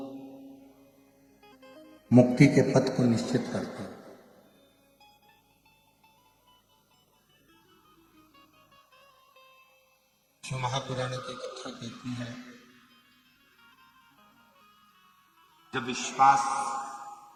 मुक्ति के पथ को निश्चित करते हैं। जो महापुराण की कथा कहती है, जब विश्वास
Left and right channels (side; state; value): both; identical; correlation 1.00